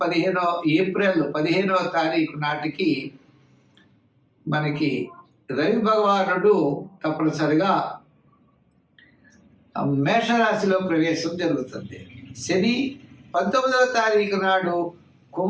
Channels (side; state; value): both; identical; correlation 1.00